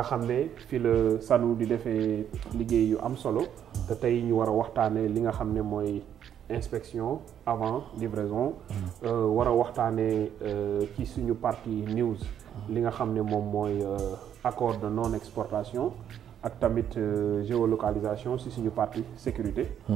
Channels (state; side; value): quieter; left; 9.5 dB